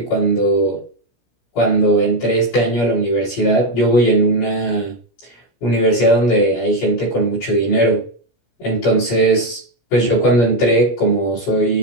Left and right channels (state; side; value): late; right; 17 ms